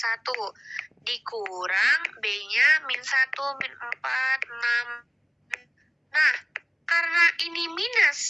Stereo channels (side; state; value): both; identical; correlation 1.00